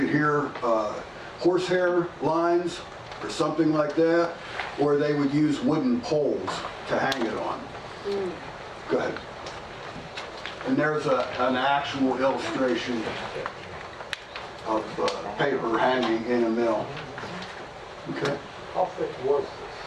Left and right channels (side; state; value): both; identical; correlation 1.00